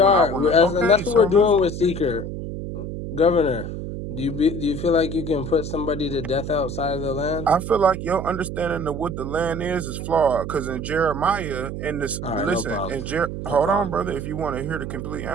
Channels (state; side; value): noise; right; hum, 6 dB below the sound